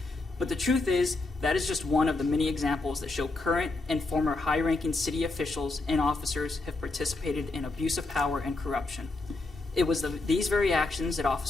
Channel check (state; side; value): quieter; right; 3.2 dB